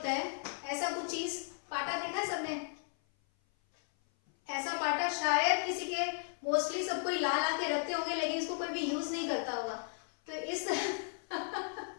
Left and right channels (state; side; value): silent; right; 54 dB below the other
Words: है, ऐसा कुछ चीज पाटा देखा है सबने? ऐसा पाटा शायद किसी के, मोस्टली सब कोई ला ला के रखते होंगे लेकिन इसको कोई भी यूज नहीं करता होगा। तो इस